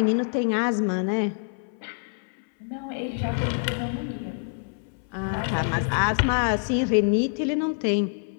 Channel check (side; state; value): right; silent; 61 dB below the other